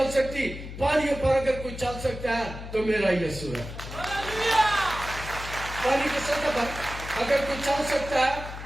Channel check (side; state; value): left; noise; hum, 10 dB below the sound